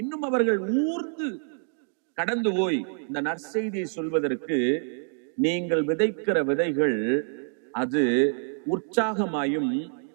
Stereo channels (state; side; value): silent; left; 60 dB below the other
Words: இன்னும் அவர்கள் ஊர்ந்து கடந்து போய் இந்த நற்செய்தியை சொல்வதற்கு நீங்கள் விதைக்கிற விதைகள் அது உற்சாகமாயும்